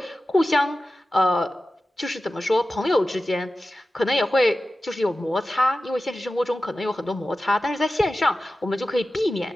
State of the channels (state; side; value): normal; both; correlation 0.94